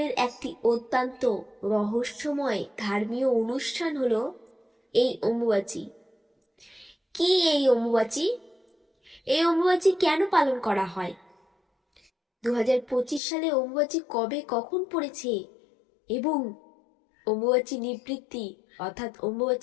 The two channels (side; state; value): right; drops out; at 13.2 s